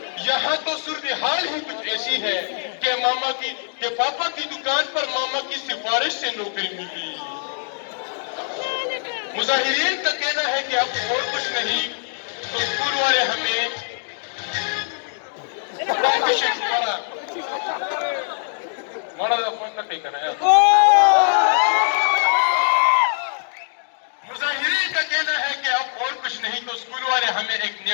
यहाँ तो सूरत हाल ही कुछ ऐसी है कि पापा की दुकान पर मामा की सिफारिश से नौकरी मिली। मुजाहिरीन का कहना है कि अब और कुछ नहीं तो स्कूल वाले हमें मुजाहिरीन का कहना है कि अब और कुछ नहीं तो स्कूल वाले हमें एक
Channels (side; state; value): right; silent; digital silence